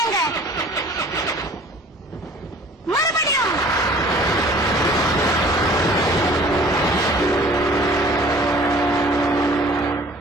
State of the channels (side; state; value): both; normal; correlation 0.50